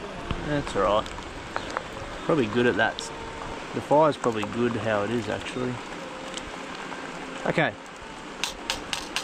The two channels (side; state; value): both; identical; correlation 1.00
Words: That's alright. Probably good at that. The fire's probably good how it is actually. Okay.